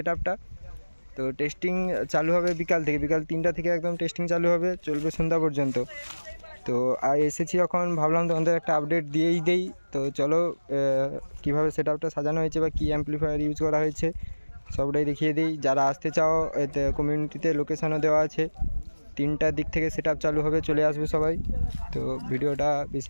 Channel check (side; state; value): both; inverted; correlation -1.00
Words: আপটা। তো টেস্টিং চালু হবে বিকাল 3টা থেকে একদম টেস্টিং চালু হবে, চলবে সন্ধ্যা পর্যন্ত। তো এসেছি যখন ভাবলাম তোমাদের একটা আপডেট দিয়েই দেই। তো চলো কীভাবে সেট আপটা সাজানো হয়েছে বা কী অ্যাম্পলিফায়ার ইউজ করা হয়েছে সবটাই দেখিয়ে দিই। যারা আসতে চাও এতে কমিউনিটিতে লোকেশানও দেওয়া আছে। 3টার দিক থেকে সেট আপ চালু হবে, চলে আসবে সবাই। তো ভিডিওটা বেশি